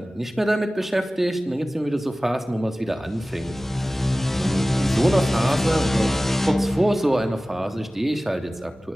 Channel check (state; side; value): normal; both; correlation 0.97